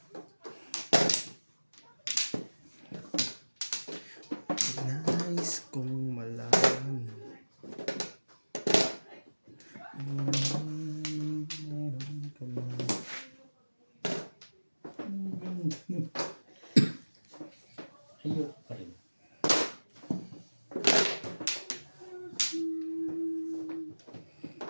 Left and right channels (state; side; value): inverted; both; correlation -1.00